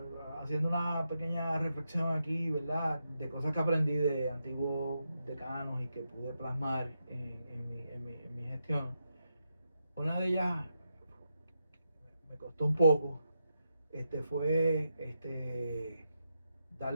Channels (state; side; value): inverted; both; correlation -0.85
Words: haciendo una pequeña reflexión aquí, ¿verdad? De cosas que aprendí de antiguos decanos y que pude plasmar en mi gestión. Una de ellas me costó un poco, fue